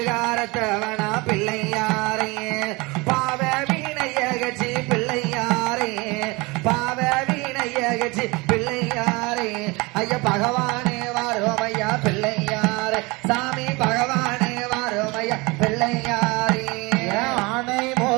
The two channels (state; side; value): quieter; left; 25.1 dB